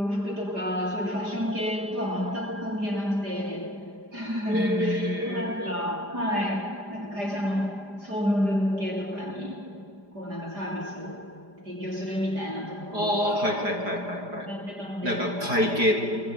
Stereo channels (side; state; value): left; late; 4.9 ms